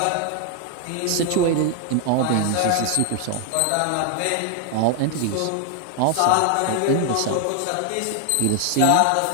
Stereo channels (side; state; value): both; different; correlation 0.00